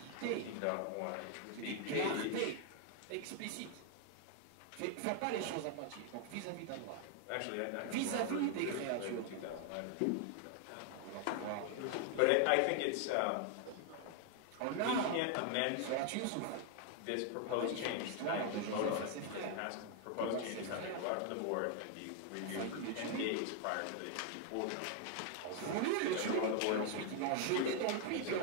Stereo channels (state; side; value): different; both; correlation 0.00